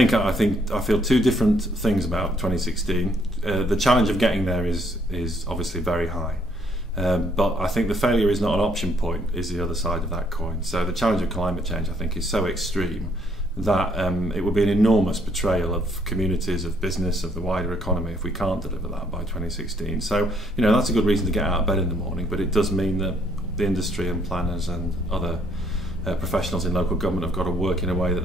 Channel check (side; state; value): both; normal; correlation 0.68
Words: feel two different things about 2016. The challenge of getting there is obviously very high, but I think the failure is not an option point, is the other side of that coin. So the challenge of climate change, I think, is so extreme that it would be an enormous betrayal of communities, of business, of the wider economy if we can't deliver that by 2016. So, you know, that's a good reason to get out of bed in the morning, but it does mean that the industry and planners and other professionals in local government have got to work in a way that